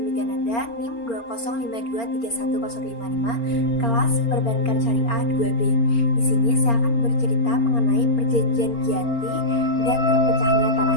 Migananda, NIM 205231055, kelas Perbankan Syariah 2B. Di sini saya akan bercerita mengenai perjanjian Giyanti dan terpecahnya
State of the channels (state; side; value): late; right; 4.3 ms